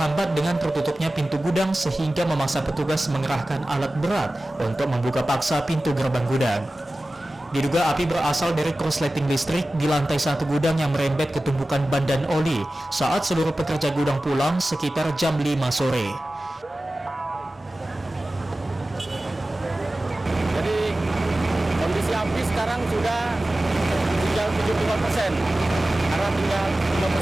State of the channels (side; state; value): both; normal; correlation 0.96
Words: dengan tertutupnya pintu gudang sehingga memaksa petugas mengerahkan alat berat untuk membuka paksa pintu gerbang gudang. Diduga api berasal dari korsleting listrik di lantai 1 gudang yang merembet ke tumpukan ban dan oli saat seluruh pekerja gudang pulang sekitar jam 5 sore. Jadi kondisi api sekarang sudah tinggal 75%, karena tinggal